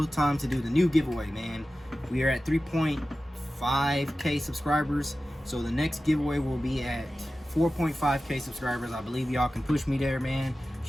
time to do the new giveaway, man. We are at 3.5K subscribers, so the next giveaway will be at 4.5K subscribers. I believe y'all can push me there, man.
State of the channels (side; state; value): both; normal; correlation 0.95